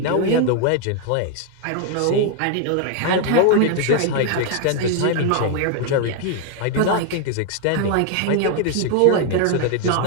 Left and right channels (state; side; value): different; both; correlation 0.00